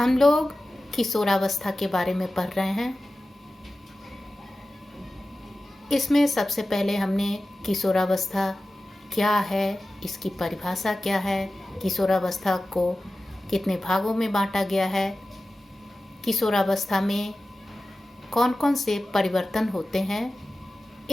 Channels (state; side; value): normal; both; correlation 0.95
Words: लोग किशोरावस्था के बारे में पढ़ रहे हैं। इसमें सबसे पहले हमने किशोरावस्था क्या है, इसकी परिभाषा क्या है, किशोरावस्था को कितने भागों में बांटा गया है, किशोरावस्था में कौन कौन से परिवर्तन होते हैं,